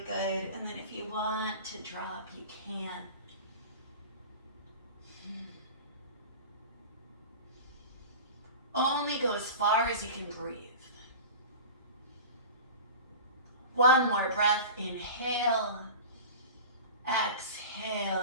good. And then if you want to drop, you can. Only go as far as you can breathe. One more breath. Inhale. Exhale,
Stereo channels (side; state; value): both; inverted; correlation -0.34